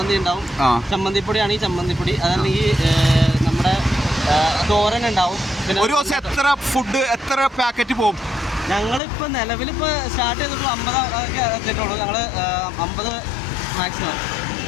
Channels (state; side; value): drops out; right; at 9.0 s